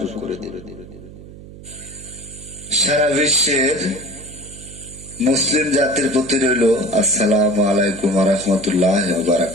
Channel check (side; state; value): right; noise; hum, 17 dB below the sound